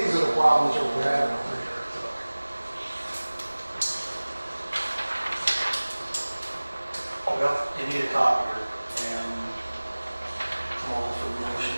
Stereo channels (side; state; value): both; inverted; correlation -1.00